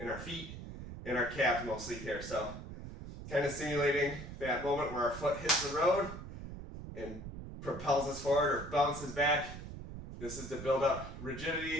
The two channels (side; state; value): right; noise; rumble, 10 dB below the sound